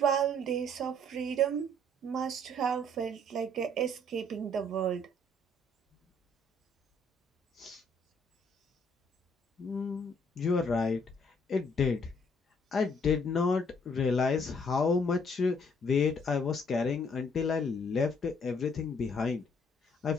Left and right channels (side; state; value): both; normal; correlation 0.65